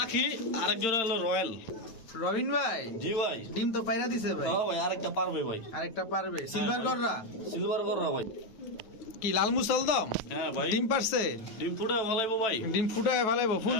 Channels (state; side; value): late; right; 9.4 ms